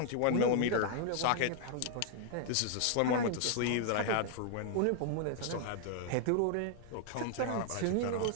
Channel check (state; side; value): different; both; correlation 0.00